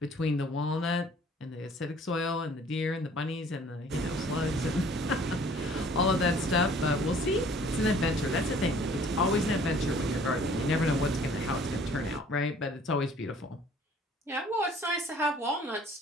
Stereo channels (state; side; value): normal; both; correlation 0.54